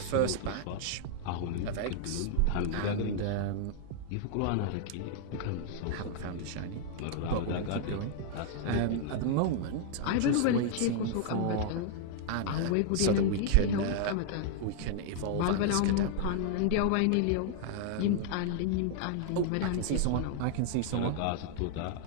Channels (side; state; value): both; different; correlation -0.01